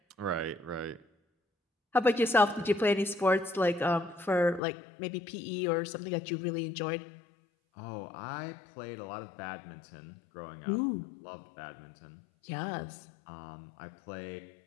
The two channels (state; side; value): drops out; right; at 4.6 s